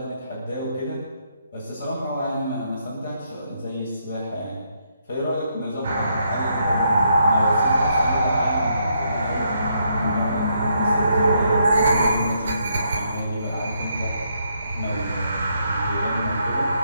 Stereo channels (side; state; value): both; inverted; correlation -0.75